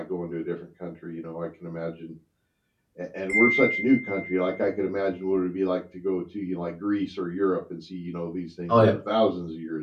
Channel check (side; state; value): both; identical; correlation 1.00